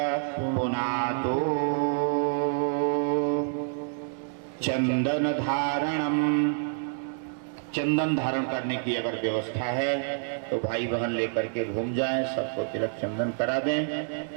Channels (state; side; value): silent; left; digital silence